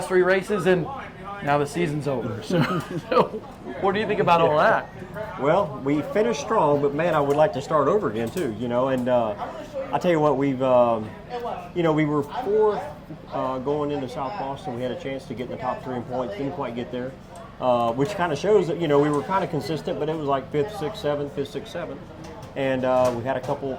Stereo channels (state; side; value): identical; both; correlation 1.00